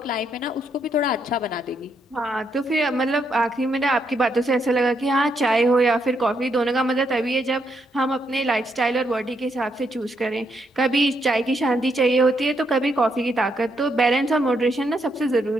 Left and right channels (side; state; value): both; normal; correlation 0.77